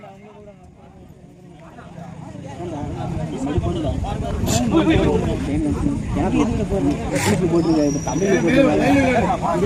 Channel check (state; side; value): identical; both; correlation 1.00